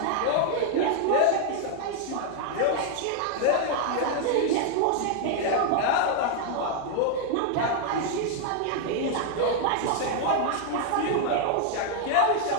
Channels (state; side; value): different; both; correlation 0.00